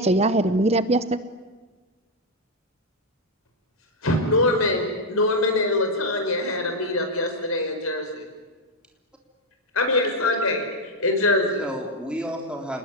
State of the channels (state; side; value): normal; both; correlation 0.03